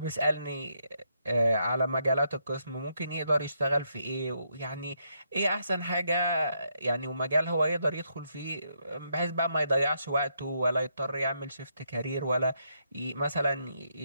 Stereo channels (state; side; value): inverted; both; correlation -0.77